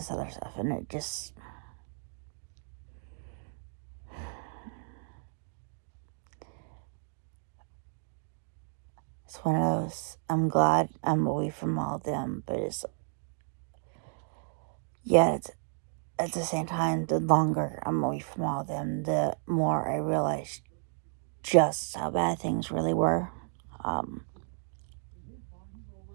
other stuff, and it just... It's one of those, I'm glad I'm away from all of them, but it's... Yeah, it's, at the same time, the longer I'm away from all of them, the more I realize just how bad things really were.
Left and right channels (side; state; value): left; silent; 56 dB below the other